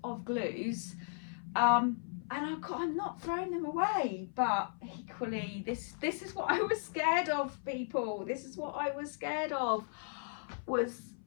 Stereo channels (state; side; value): silent; right; 54 dB below the other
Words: of glues. And I'm not throwing them away, but equally, this is what I was scared of, people. This is what I was scared of, was